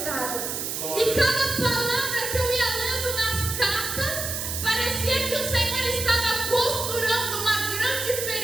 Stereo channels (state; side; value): noise; right; hiss, 3 dB below the sound